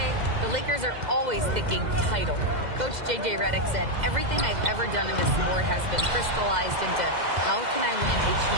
the Lakers are always thinking title. Coach J.J. Redick said, everything I've ever done in this sport has been crystallized into how can I win a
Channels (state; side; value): late; left; 2.0 ms